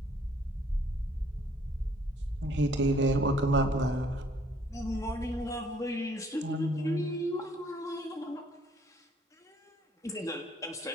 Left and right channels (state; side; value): normal; both; correlation 0.63